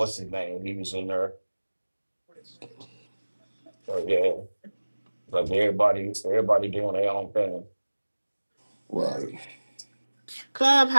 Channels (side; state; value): both; inverted; correlation -1.00